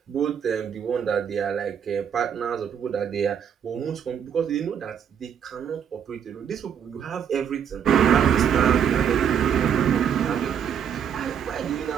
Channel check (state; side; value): quieter; left; 8.3 dB